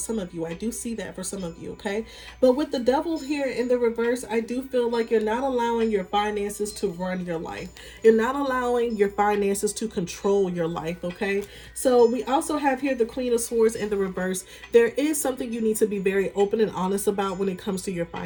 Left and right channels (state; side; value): identical; both; correlation 1.00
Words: of you. I do see that for some of you, okay? But with the devil here in the reverse, I do feel like you're not allowing your finances to run your life. You're not allowing your finances to control your life, okay? So we also have here the Queen of Swords in the reverse. There is something you need to be very open and honest about when it comes to your